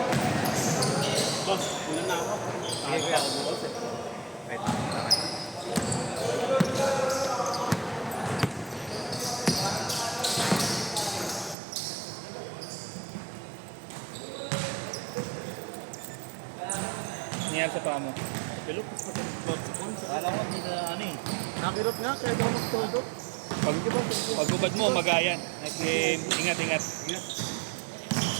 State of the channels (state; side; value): drops out; left; at 11.6 s